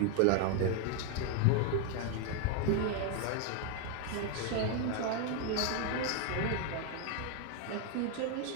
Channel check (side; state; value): both; different; correlation 0.01